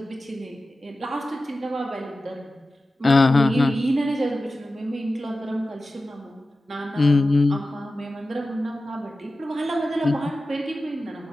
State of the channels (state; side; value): normal; both; correlation 0.94